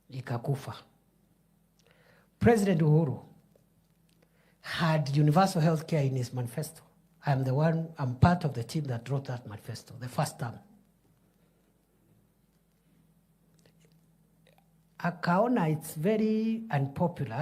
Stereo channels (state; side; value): identical; both; correlation 1.00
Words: Ikakufa. President Uhuru had universal health care in his manifesto. I'm part of the team that wrote that manifesto, the first term. Akaona it's very